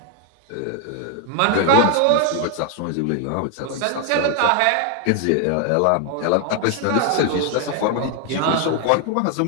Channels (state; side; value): different; both; correlation 0.00